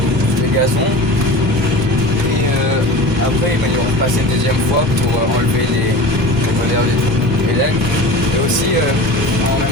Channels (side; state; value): both; normal; correlation 0.34